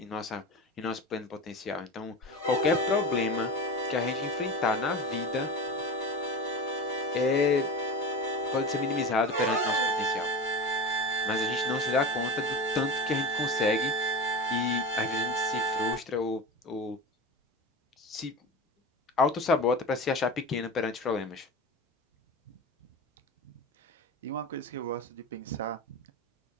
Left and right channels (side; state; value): both; normal; correlation 0.28